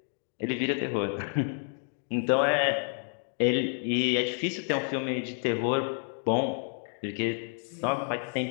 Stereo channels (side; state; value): right; silent; 58 dB below the other